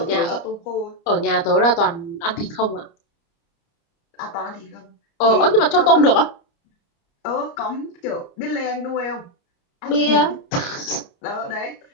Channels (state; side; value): late; right; 29 ms